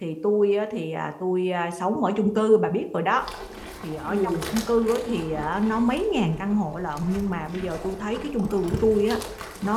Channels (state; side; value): identical; both; correlation 1.00